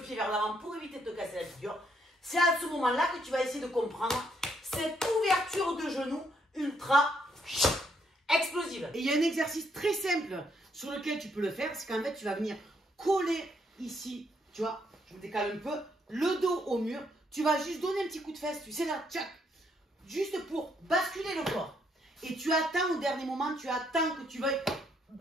vers l'avant pour éviter de te casser la figure, c'est à ce moment-là que tu vas essayer de comprendre cette ouverture de genou ultra explosive. Et il y a un exercice très simple sur lequel tu peux le faire, c'est qu'en fait tu vas venir coller ici, tu vois, je me décale un peu, le dos au mur, tu vas juste donner un petit coup de fesse, tu sais là, tchac, juste pour basculer le corps. Et tu attends au dernier moment, tu attends que tu veuilles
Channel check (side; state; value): both; normal; correlation 0.73